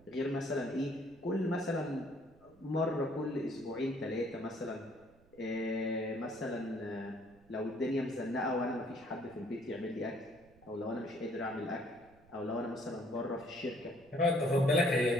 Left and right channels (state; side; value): noise; right; rumble, 27 dB below the sound